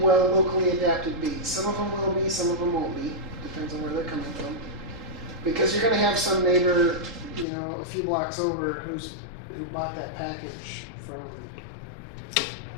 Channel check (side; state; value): right; drops out; at 7.5 s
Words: locally adapted bees, some of them will be, some of them won't be, depends on where they're coming from. Because you're going to have some neighbor, a few blocks over who bought that package